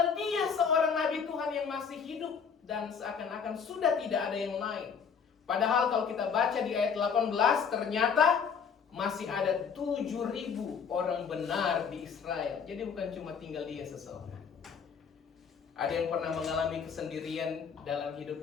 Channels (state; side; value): quieter; right; 6.5 dB